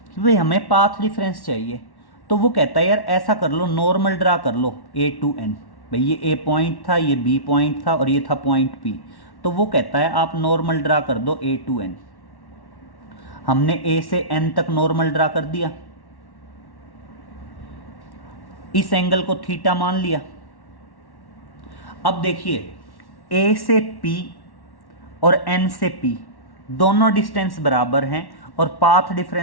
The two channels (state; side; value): late; right; 1.1 ms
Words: कि भाई हमें पाथ डिफरेंस चाहिए, तो वो कहता है यार ऐसा कर लो, नॉर्मल ड्रा कर लो ए टू एन। भाई ये ए पॉइंट था, ये बी पॉइंट था और ये था पॉइंट पी, तो वो कहता है आप नॉर्मल ड्रा कर दो ए टू एन। हमने ए से एन तक नॉर्मल ड्रा कर दिया, इस एंगल को थीटा मान लिया। अब देखिए ए से पी और n से p दोनों डिस्टेंस बराबर हैं और पाथ